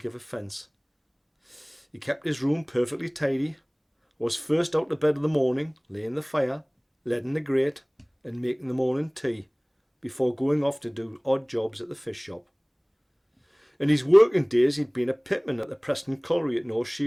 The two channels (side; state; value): both; identical; correlation 1.00